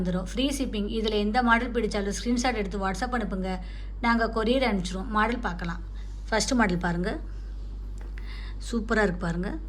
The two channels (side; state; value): both; identical; correlation 1.00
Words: Free shipping. இதில் எந்த மாடல் பிடிச்சாலும் ஸ்க்ரீன்ஷாட் எடுத்து வாட்ஸ்அப் அனுப்புங்க, நாங்கள் கொரியர் அனுப்பிச்சிடுவோம். மாடல் பார்க்கலாம். ஃபஸ்ட்டு மாடல் பாருங்கள், சூப்பராக இருக்குது பாருங்கள்.